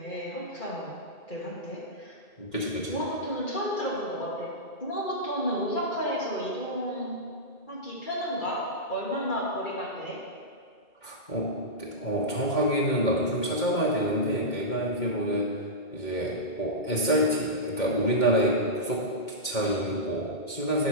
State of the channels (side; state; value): right; late; 2.1 ms